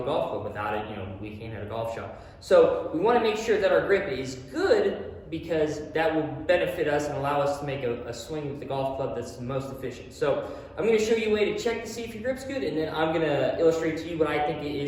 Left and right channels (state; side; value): identical; both; correlation 1.00